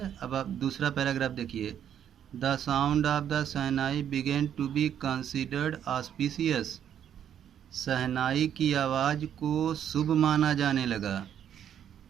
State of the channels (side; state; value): left; quieter; 9.5 dB